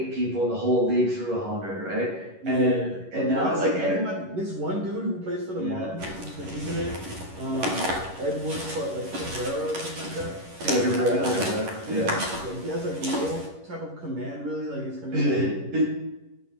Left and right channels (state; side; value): late; left; 11 ms